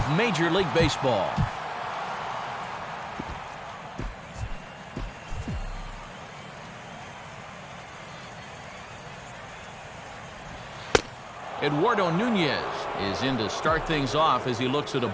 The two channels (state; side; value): identical; both; correlation 1.00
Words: Major League Baseball. Eduardo Nunez is in to start things off as he looks at a